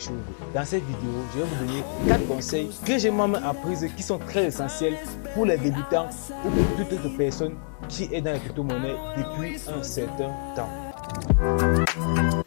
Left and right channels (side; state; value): right; silent; digital silence